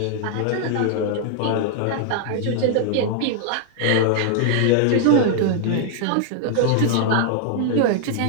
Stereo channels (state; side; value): different; both; correlation 0.00